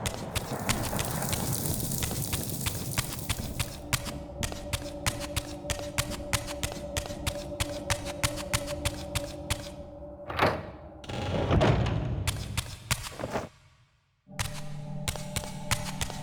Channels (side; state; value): both; identical; correlation 1.00